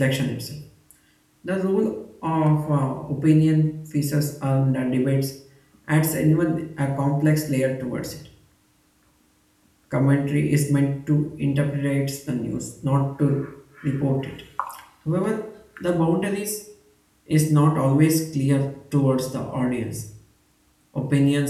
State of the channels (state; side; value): identical; both; correlation 1.00